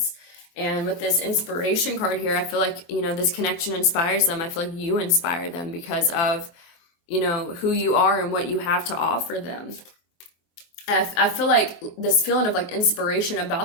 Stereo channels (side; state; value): right; late; 23 ms